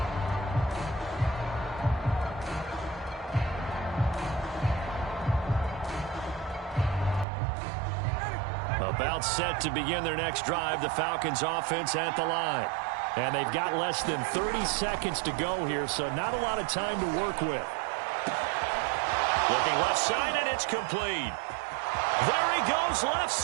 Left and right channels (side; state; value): left; drops out; at 7.2 s